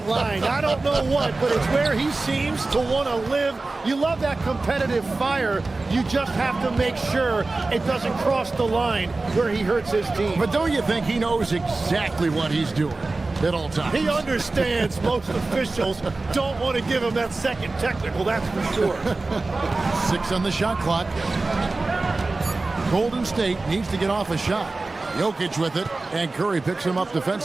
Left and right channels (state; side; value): quieter; left; 3.4 dB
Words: line. I don't know what, but it's where he seems to want to live. You love that competitive fire. You just have to make sure it doesn't cross the line where he hurts his team. But don't you think he knows exactly what he's doing at all times? He understands most officials don't want to give him that second technical, that's for sure. 6 on the shot clock. Golden State needs to get off a shot. Jokic with it, and Curry picks him up